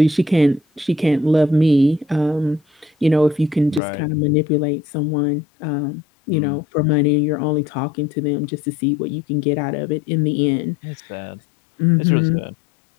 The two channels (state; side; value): drops out; right; at 3.8 s